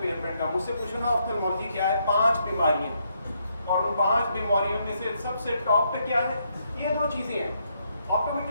کا, مجھ سے پوچھو نا آفتالمالوجی کیا ہے, 5 بیماریاں, اور ان 5 بیماریوں میں سے سب سے ٹاپ پہ کیا ہے؟ یہ 2 چیزیں ہیں.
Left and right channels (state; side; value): inverted; both; correlation -0.76